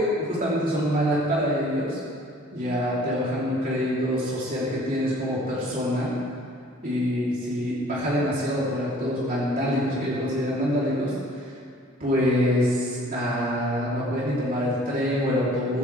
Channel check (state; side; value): normal; both; correlation 0.53